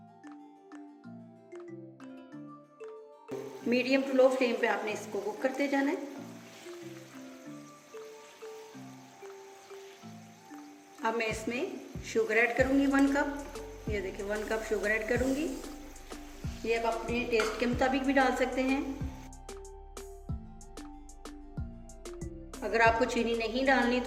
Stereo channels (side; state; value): both; identical; correlation 1.00